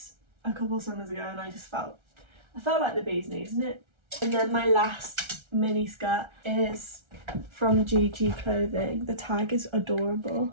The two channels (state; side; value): late; left; 1.3 ms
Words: a couple of summers ago and I felt like the bee's knees, isn't it? And then my last mini skirt is from GG Clothing. The tag is adorable